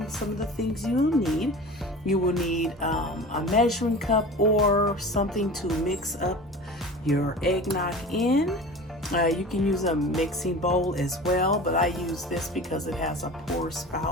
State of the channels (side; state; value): both; normal; correlation 0.36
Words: some of the things you will need. You will need a measuring cup or something to mix up your eggnog in. You can use a mixing bowl as well, but I use this because it has a pour